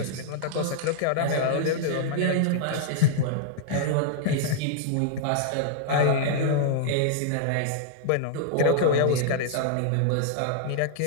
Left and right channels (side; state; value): both; different; correlation -0.01